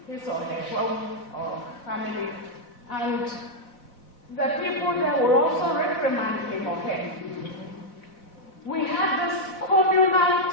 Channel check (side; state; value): right; late; 4.1 ms